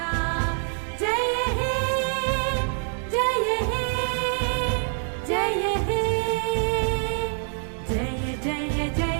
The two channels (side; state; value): left; silent; digital silence